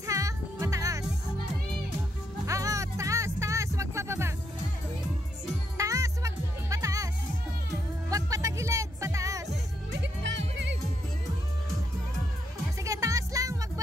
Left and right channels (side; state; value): both; normal; correlation 0.78